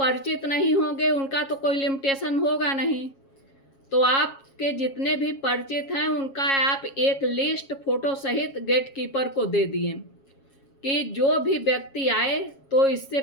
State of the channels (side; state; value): right; late; 7.3 ms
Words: नहीं होंगे उनका तो कोई लिमिटेशन होगा नहीं। तो आपके जितने भी परिचित हैं उनका आप एक लिस्ट फोटो सहित गेटकीपर को दे दिए कि जो भी व्यक्ति आए तो इससे